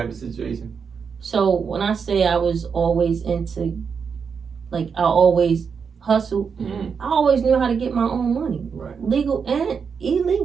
of situation. So when I say I was always into, like, I always hustled, I always knew how to get my own money. Right. Legal and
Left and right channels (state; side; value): quieter; left; 6.1 dB